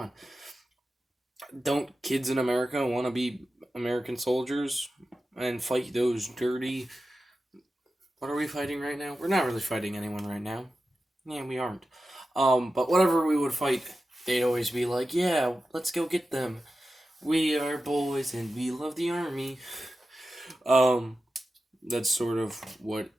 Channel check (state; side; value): normal; both; correlation 0.92